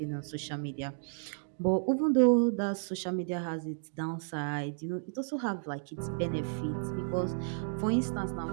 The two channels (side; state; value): left; silent; digital silence